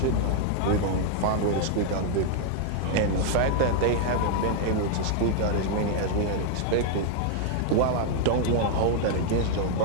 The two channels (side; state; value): both; different; correlation 0.00